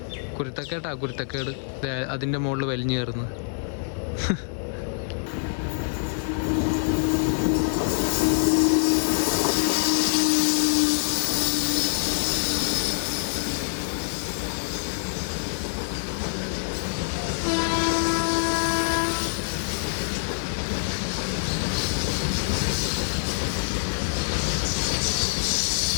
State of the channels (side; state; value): right; silent; digital silence